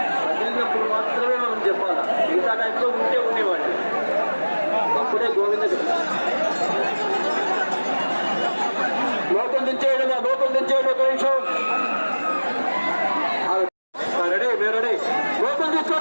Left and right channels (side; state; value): both; inverted; correlation -1.00